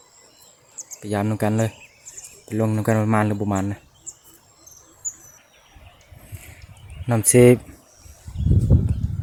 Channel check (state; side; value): identical; both; correlation 1.00